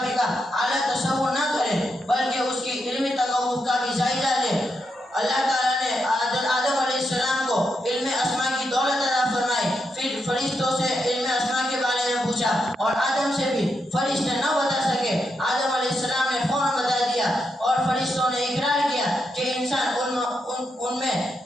کا اعلیٰ تصور نہ کرے بلکہ اس کی علمی تقوف کا بھی جائزہ لے. اللہ تعالیٰ نے آدم علیہ السلام کو علم اسماء کی دولت عطا فرمائی. پھر فرشتوں سے علم اسماء کے بارے میں پوچھا اور آدم سے بھی فرشتے نہ بتا سکے. آدم علیہ السلام نے فوراً بتا دیا اور فرشتوں نے اقرار کیا کہ انسان ان میں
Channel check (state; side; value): normal; both; correlation 0.83